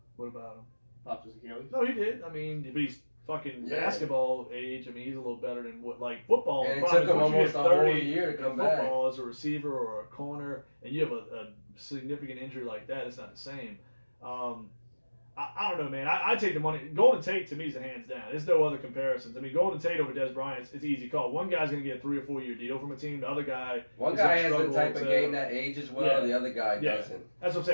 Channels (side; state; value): both; inverted; correlation -1.00